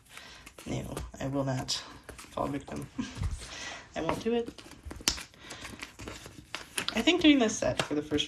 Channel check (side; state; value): both; identical; correlation 1.00